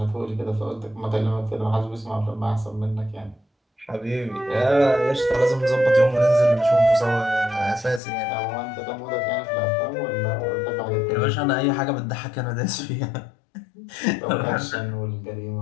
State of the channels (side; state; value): right; drops out; at 8.0 s